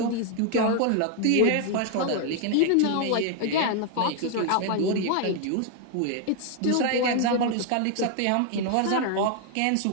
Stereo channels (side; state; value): both; different; correlation 0.00